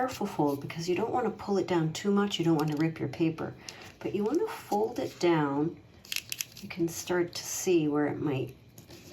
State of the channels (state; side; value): identical; both; correlation 1.00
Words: fold because you don't want to pull it down too much. You don't want to rip your paper, but you want to fold it down. You can start to see where it might